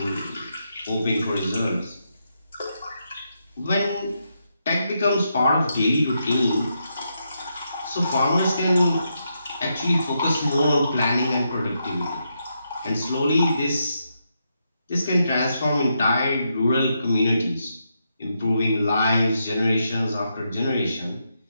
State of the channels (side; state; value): both; inverted; correlation -0.82